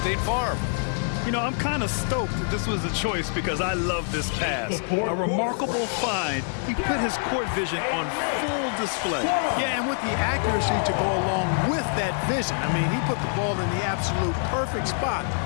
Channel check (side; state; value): right; silent; 58 dB below the other